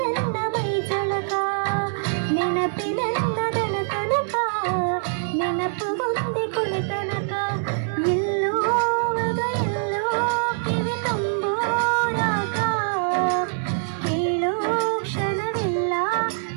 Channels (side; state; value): left; silent; 63 dB below the other